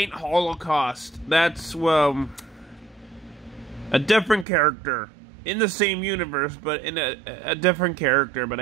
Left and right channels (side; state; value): left; drops out; at 4.5 s